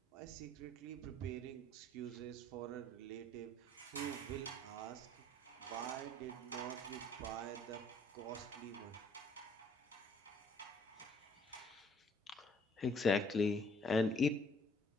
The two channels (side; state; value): both; normal; correlation 0.61